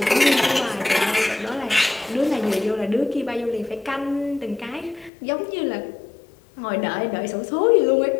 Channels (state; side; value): drops out; right; at 5.1 s